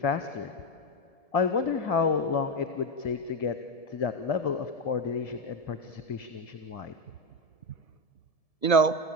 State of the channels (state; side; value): late; right; 1.7 ms